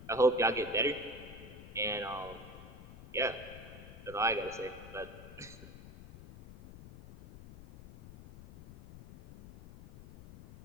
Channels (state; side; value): noise; left; rumble, 15 dB below the sound